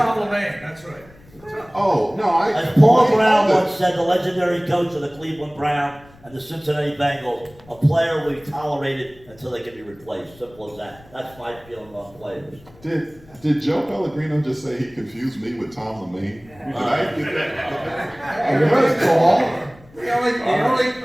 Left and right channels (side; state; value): left; noise; rumble, 25 dB below the sound